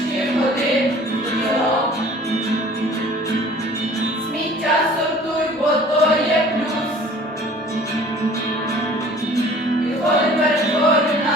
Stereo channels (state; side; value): normal; both; correlation 0.49